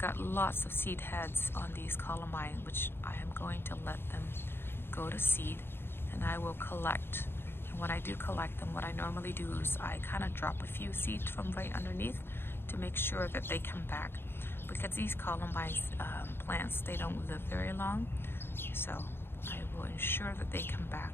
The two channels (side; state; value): right; late; 0.11 ms